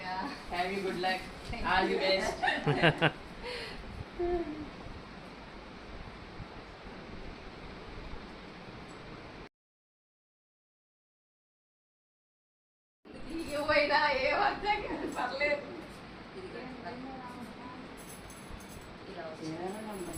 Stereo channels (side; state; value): both; identical; correlation 1.00